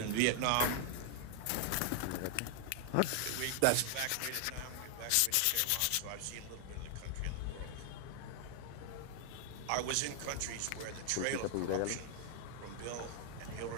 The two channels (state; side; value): different; both; correlation 0.00